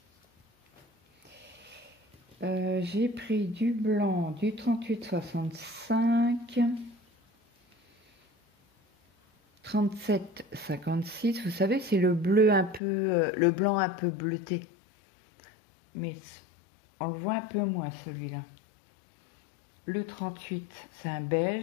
J'ai pris du blanc, du 38,65, 37,56. Vous savez, c'est le bleu un peu, le blanc un peu bleuté. Mais on le voit un peu moins celui-là. Le 38, c'est un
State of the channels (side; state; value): right; drops out; at 12.8 s